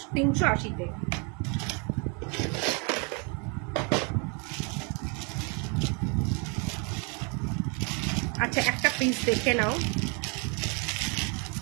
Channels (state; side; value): quieter; left; 34.8 dB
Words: আচ্ছা একটা পিস দেখে নাও,